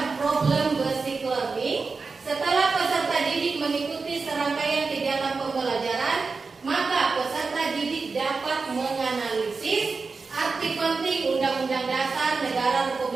problem basic learning. Setelah peserta didik mengikuti serangkaian kegiatan pembelajaran, maka peserta didik dapat menganalisis arti penting Undang-Undang Dasar Negara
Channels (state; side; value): quieter; left; 4.4 dB